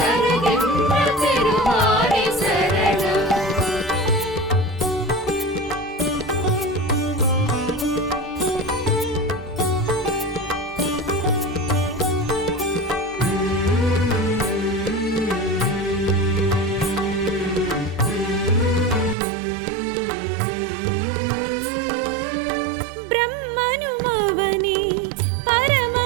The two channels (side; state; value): left; drops out; at 19.2 s